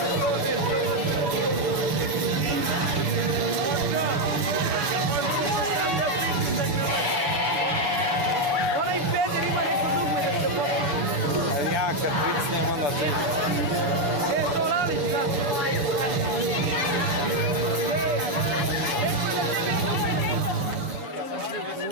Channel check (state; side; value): late; left; 7.2 ms